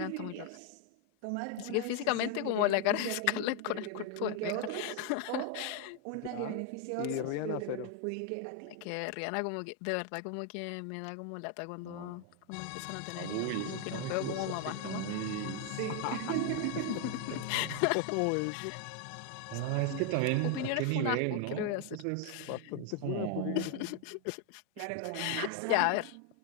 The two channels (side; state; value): both; different; correlation 0.00